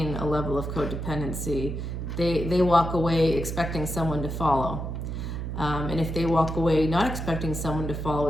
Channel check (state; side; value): noise; right; hum, 4 dB below the sound